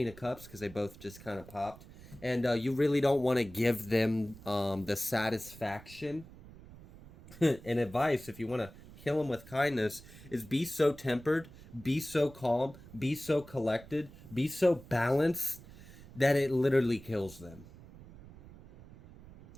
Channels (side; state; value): right; noise; rumble, 19 dB below the sound